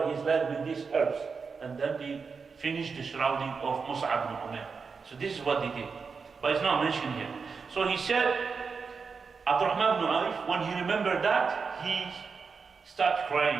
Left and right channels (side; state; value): left; quieter; 5.2 dB